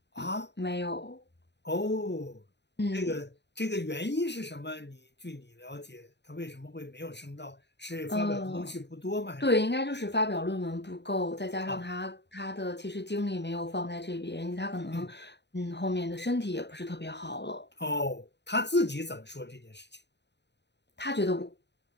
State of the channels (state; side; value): late; right; 0.50 ms